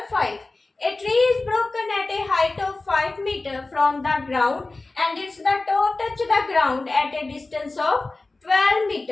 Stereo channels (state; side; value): quieter; right; 3.3 dB